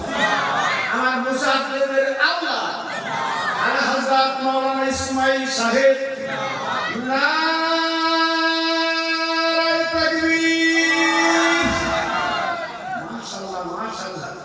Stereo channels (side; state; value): both; identical; correlation 1.00